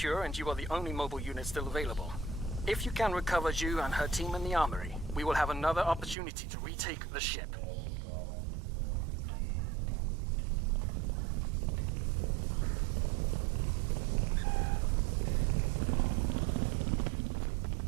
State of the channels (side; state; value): left; drops out; at 6.2 s